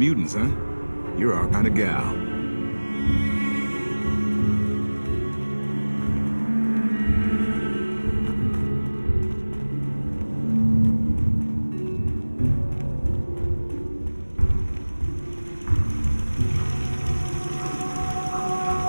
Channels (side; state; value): both; inverted; correlation -1.00